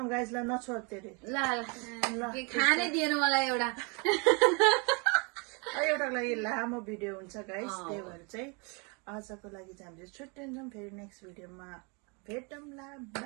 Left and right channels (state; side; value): quieter; left; 32.5 dB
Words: गाइजलाई नछोड तेरे ल खानै दिएन मलाई एउटा एउटाको लागि लामो भिडियो हुन्छ गाइस त्यही भएर चाहिँ आजको लागि चाहिँ हामीले छुट्टिन्छौँ फेरि नेक्स्ट भिडियोमा भेटौँला